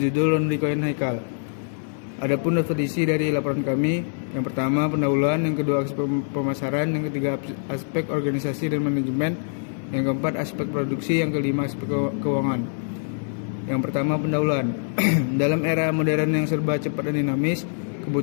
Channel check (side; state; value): right; silent; 61 dB below the other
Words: Laundry Coin Haikal. Adapun definisi dari laporan kami, yang pertama pendahuluan, yang kedua aspek pemasaran, yang ketiga aspek organisasi dan manajemen, yang keempat aspek produksi, yang kelima aspek keuangan. Yang pertama pendahuluan. Dalam era modern yang serba cepat dan dinamis,